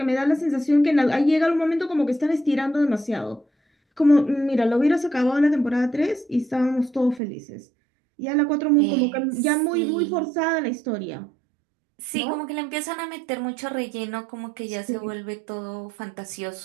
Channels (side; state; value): left; drops out; at 7.2 s